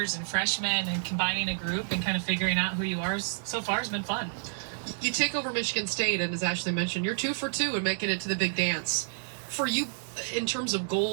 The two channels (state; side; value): silent; left; digital silence